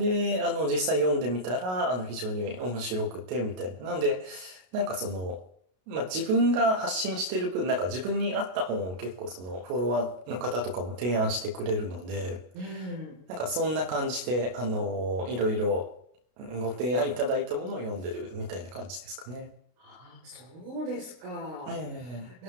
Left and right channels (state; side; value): late; left; 33 ms